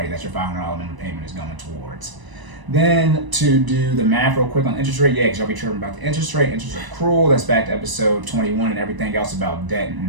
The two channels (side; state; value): left; late; 1.0 ms